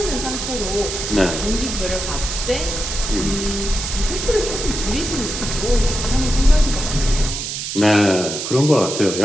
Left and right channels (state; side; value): noise; right; hiss, 5 dB below the sound